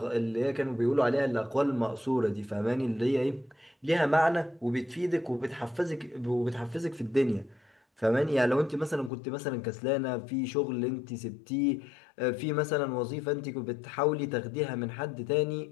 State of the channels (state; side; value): drops out; right; at 9.1 s